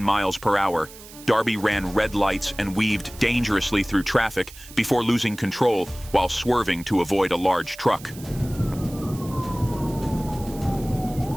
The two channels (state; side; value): noise; right; hiss, 18 dB below the sound